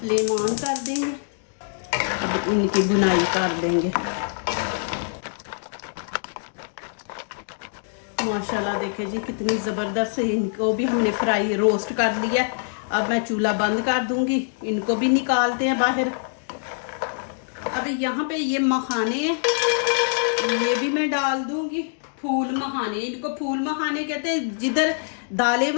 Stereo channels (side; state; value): right; silent; digital silence